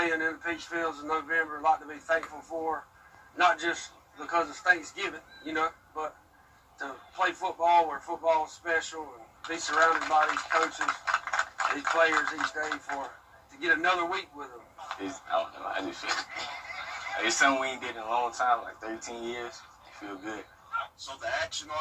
in the Peach Fields in November. A lot to be thankful for, not just because it's Thanksgiving, but to play football where football is special and be surrounded by these coaches, these players each day to get another week with them. I don't know. I just feel it's something we ain't did in a long time, like 13 years. It feel good. So the action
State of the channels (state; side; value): identical; both; correlation 1.00